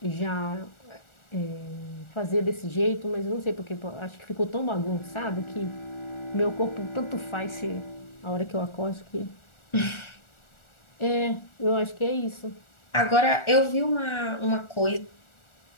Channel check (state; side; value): late; right; 1.4 ms